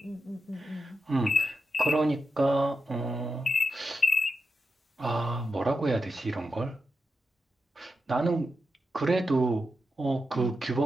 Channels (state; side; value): normal; both; correlation 0.88